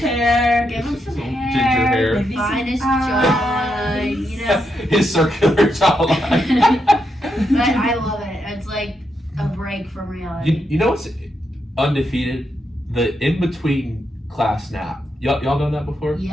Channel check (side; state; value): both; normal; correlation 0.82